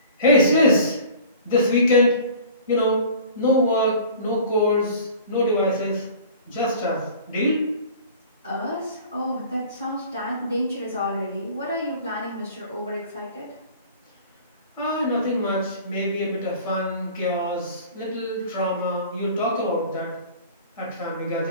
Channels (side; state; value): both; inverted; correlation -0.44